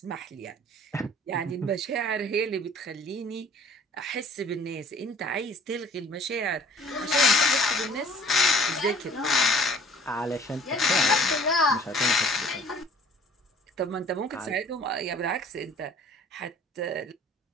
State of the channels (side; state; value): both; normal; correlation 0.50